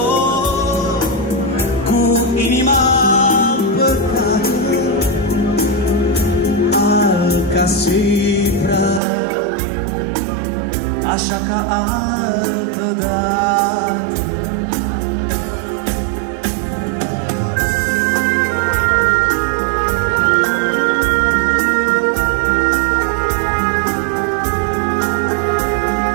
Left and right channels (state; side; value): drops out; left; at 9.0 s